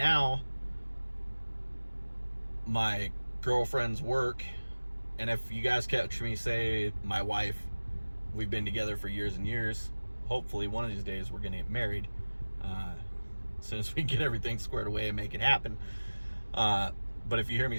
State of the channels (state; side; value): inverted; both; correlation -1.00